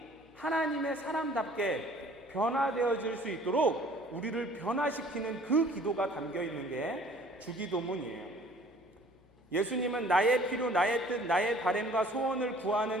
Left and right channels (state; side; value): noise; left; hum, 29 dB below the sound